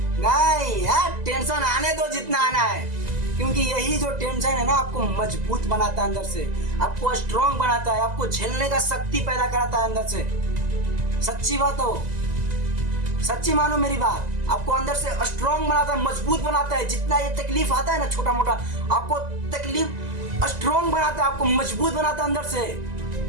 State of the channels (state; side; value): late; left; 2.0 ms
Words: नहीं यार, टेंशन आने दो जितना आना है, क्योंकि यही जो टेंशन है ना आपको मजबूत बनाता है अंदर से, आपको स्ट्रॉन्ग बनाता है, आपको झेलने का शक्ति पैदा कराता है अंदर से। सच्ची बात हो, सच्ची मानो मेरी बात, आपको अंदर से स्ट्रॉन्ग बनाता है, मजबूत बनाता है। जितना ये तकलीफ आता है ना छोटा मोटा, आपको तकलीफ स्ट्रॉन्ग बनाता है, आपको मजबूत बनाता है अंदर से।